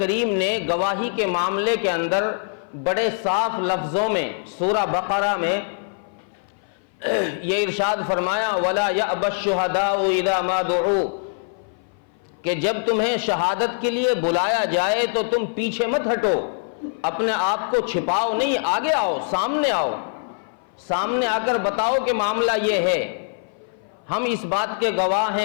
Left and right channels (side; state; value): right; silent; 58 dB below the other